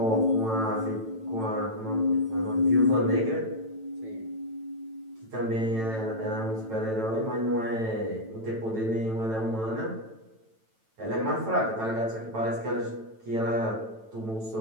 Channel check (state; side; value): late; left; 9.0 ms